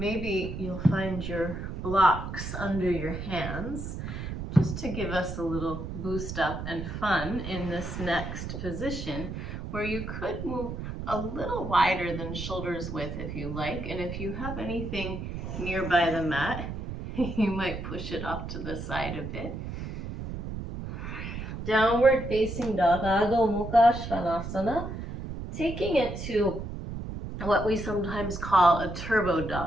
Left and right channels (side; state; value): right; noise; rumble, 7 dB below the sound